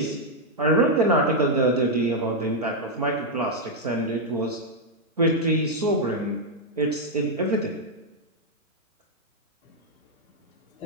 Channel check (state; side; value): normal; both; correlation -0.02